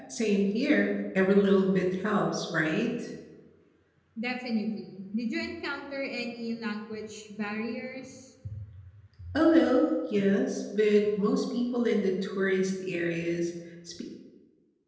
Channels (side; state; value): both; identical; correlation 1.00